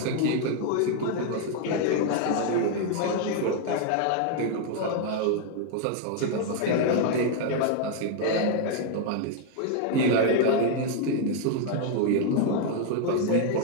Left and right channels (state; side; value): different; both; correlation 0.00